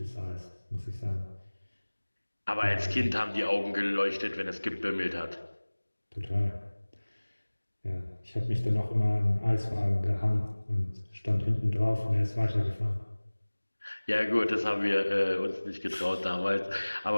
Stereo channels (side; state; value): both; inverted; correlation -1.00